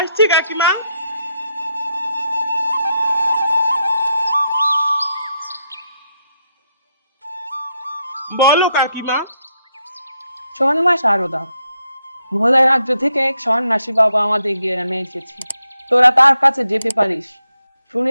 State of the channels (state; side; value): inverted; both; correlation -0.80